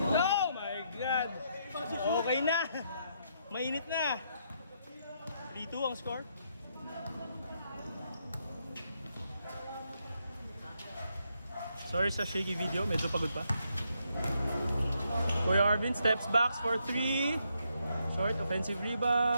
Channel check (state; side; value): inverted; both; correlation -0.77